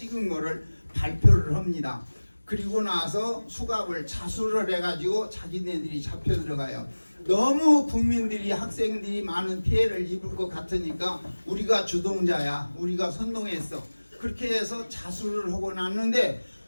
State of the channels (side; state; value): both; inverted; correlation -1.00